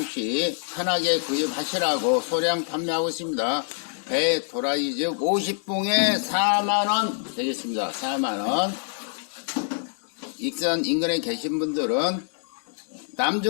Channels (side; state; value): right; silent; digital silence